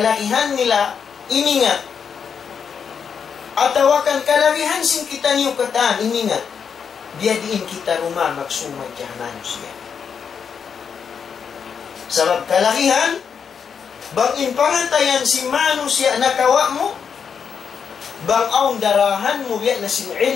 nila iningat atawakan kalahihan sin kita niyo kataan iningat dia diin kita rumah magsumad kaya manusia sabab kalahihan bang inpangantayan si manusia nakawa mo bang aung darahan mo biya na sin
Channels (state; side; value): quieter; right; 6.8 dB